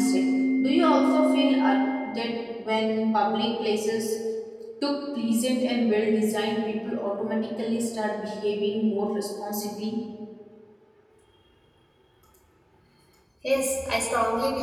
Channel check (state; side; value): identical; both; correlation 1.00